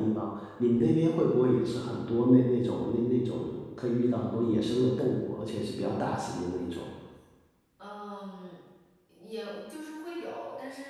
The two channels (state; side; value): identical; both; correlation 1.00